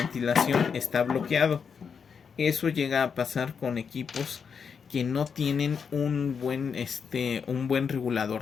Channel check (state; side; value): quieter; right; 6.3 dB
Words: está bloqueado. Eso llega a pasar con equipos que no tienen un buen